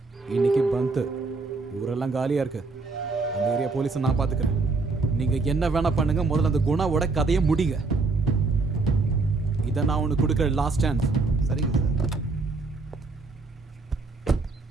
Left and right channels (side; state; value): left; quieter; 3.8 dB